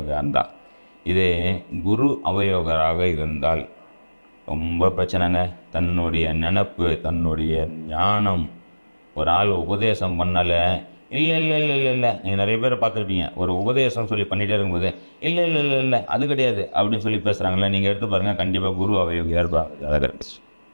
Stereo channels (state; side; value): inverted; both; correlation -1.00